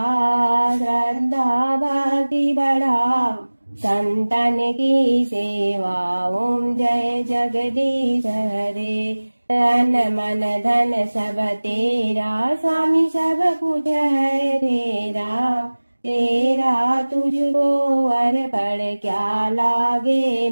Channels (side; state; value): both; inverted; correlation -1.00